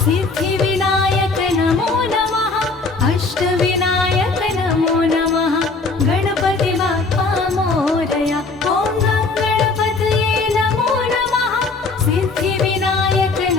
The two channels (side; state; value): right; quieter; 3.9 dB